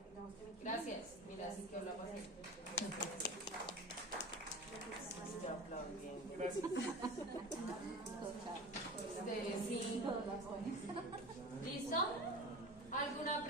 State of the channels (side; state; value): both; normal; correlation 0.33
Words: Gracias. Mira, así quedó la paciente. Gracias. Ustedes sí. ¿Listo? ¿Alguna